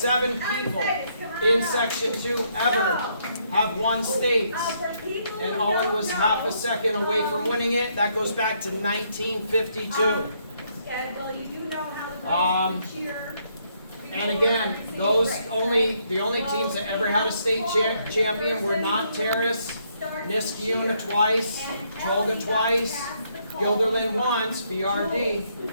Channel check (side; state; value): both; inverted; correlation -0.72